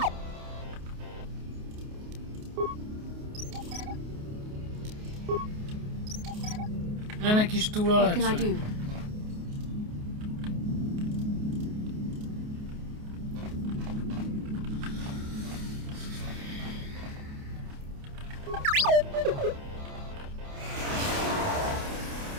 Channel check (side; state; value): left; late; 28 ms